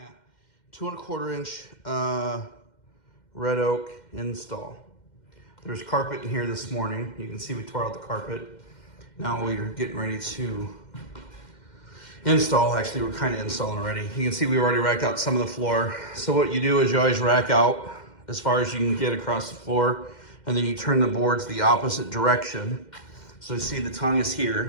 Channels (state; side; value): late; right; 2.1 ms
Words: 2¼ inch red oak install. There's carpet in here this morning. You can see we tore out the carpet. Now we're getting ready to install. Actually, we're kind of installing already. You can see we already racked out some of the floor. So what you do is you always rack out as far as you can get across the floor, and then you turn the boards the opposite direction. So you see the tongue is